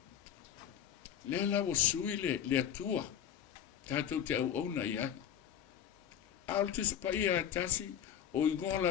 Le la o sui le atua. Tātou te au auna i ai. Altus pa ia tasi o ingoa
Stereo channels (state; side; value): quieter; right; 9.3 dB